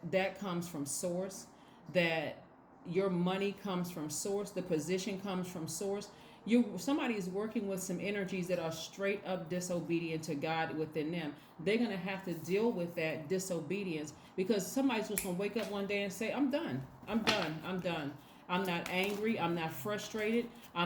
comes from source, that your money comes from source, the position comes from source, somebody is working with some energies that are straight up disobedient to God within them. They're going to have to deal with that disobedience, because somebody's just going to wake up one day and say, I'm done. I'm not angry. I'm not frustrated.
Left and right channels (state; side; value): identical; both; correlation 1.00